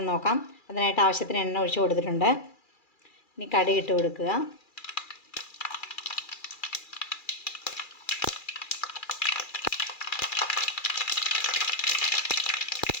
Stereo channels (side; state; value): right; late; 2.4 ms